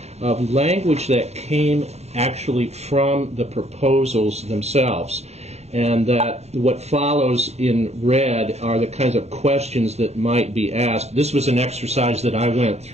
of language that came actually from the proposals themselves. And that what follows in red are the kinds of questions that might be asked. This was an exercise that I went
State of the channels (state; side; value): late; left; 0.31 ms